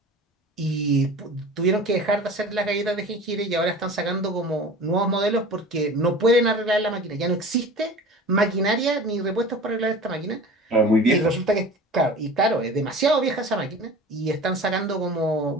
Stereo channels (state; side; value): normal; both; correlation 0.38